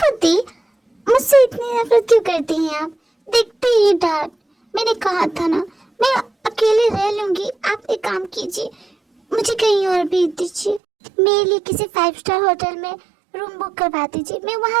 मुझसे इतनी नफरत क्यों करती हैं आप? देखते ही डैड, मैंने कहा था ना मैं अकेले रह लूंगी। आप एक काम कीजिए, मुझे कहीं और भेज दीजिए, मेरे लिए किसी 5 स्टार होटल में रूम बुक करवा दीजिए, मैं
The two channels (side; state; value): left; drops out; at 10.8 s